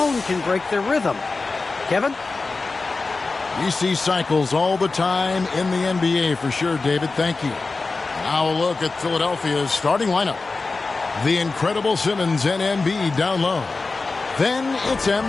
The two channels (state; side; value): quieter; right; 3.8 dB